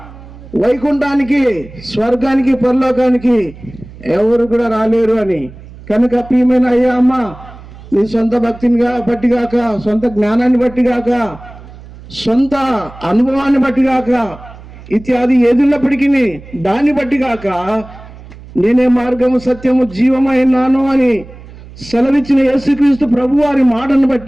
వైకుంఠానికి, స్వర్గానికి, పరలోకానికి ఎవరు కూడా రాలేరు అని. కనుక ప్రియమైన అయ్యా అమ్మ, నీ సొంత భక్తిని బట్టి గాక, సొంత జ్ఞానాన్ని బట్టి గాక, సొంత అనుభవాన్ని బట్టి గాక, ఇత్యాది ఏదున్నప్పటికీ దాన్ని బట్టి గాక, నేనే మార్గము, సత్యము, జీవమైనాను అని సెలవిచ్చిన యేసుక్రీస్తు ప్రభు వారి మాటను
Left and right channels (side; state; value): right; noise; hum, 18 dB below the sound